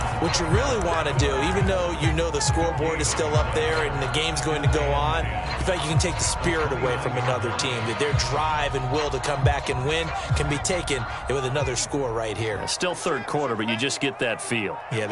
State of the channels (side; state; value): both; identical; correlation 1.00